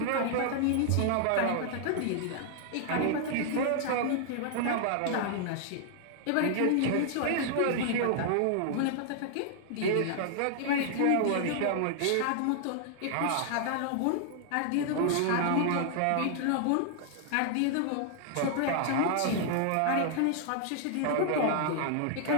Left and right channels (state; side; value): different; both; correlation 0.00